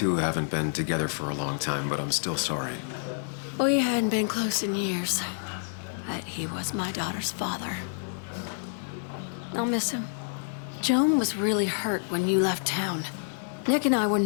haven't been together for a long time, but I'm still sorry. We hadn't been close in years, but he was my daughter's father. I'll miss him. Joan was really hurt when you left town. Nick and I were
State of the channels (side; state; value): right; silent; digital silence